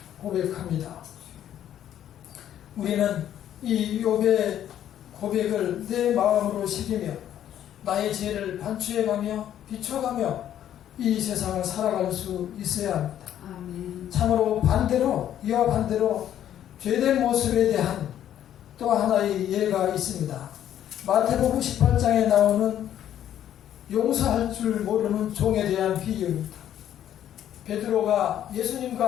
고백합니다. 우리는 이 욥의 고백을 내 마음으로 새기며 나의 죄를 반추해가며 비춰가며 이 세상을 살아갈 수 있어야 합니다. 아멘. 참으로 이와 반대로 죄된 모습에 대한 또 하나의 예가 있습니다. 마태복음 18장에 나오는 용서할 줄 모르는 종에 대한 비유입니다. 베드로가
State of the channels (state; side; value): quieter; right; 10.9 dB